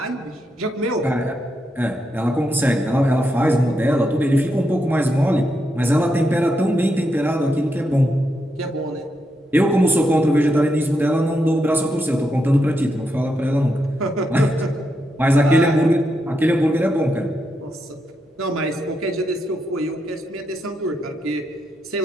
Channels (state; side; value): normal; both; correlation 0.83